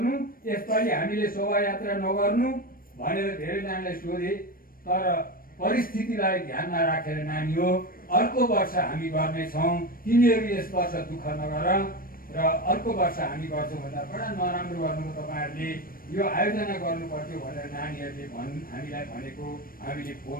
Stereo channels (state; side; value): late; right; 0.41 ms